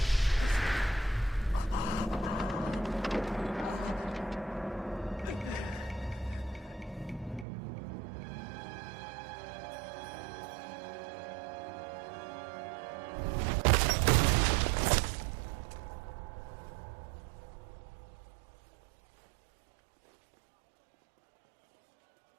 你最痛的不应该是你的手吗？江湖险恶，处处小心啊，晚辈。再见了，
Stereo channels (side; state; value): left; drops out; at 7.5 s